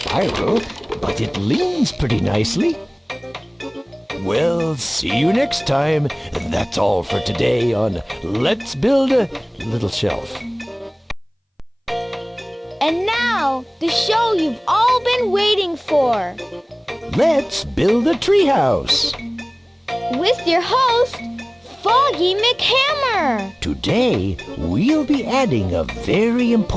but it leans pretty nicely. Well, see you next time. That's all for today on Let's Build a Little Shelf. And now, the show you've all been waiting for. Let's Build a Treehouse. With your host, Foggy McHammer! Today, we'll be adding a very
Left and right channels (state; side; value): identical; both; correlation 1.00